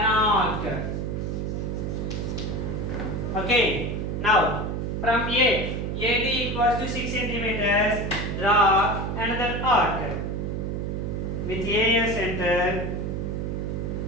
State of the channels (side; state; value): right; noise; hum, 2 dB below the sound